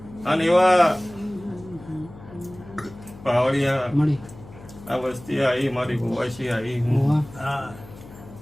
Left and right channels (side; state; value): left; noise; hum, 18 dB below the sound